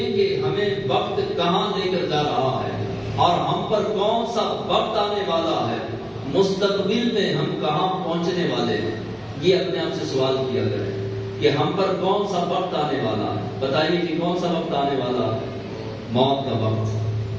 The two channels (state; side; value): identical; both; correlation 1.00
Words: کہ ہمیں وقت کہاں لے کر جا رہا ہے، اور ہم پر کون سا وقت آنے والا ہے، مستقبل میں ہم کہاں پہنچنے والے ہیں۔ یہ اپنے آپ سے سوال کیا کریں کہ ہم پر کون سا وقت آنے والا ہے. بتائیے کہ کون سا وقت آنے والا ہے؟ موت کا وقت،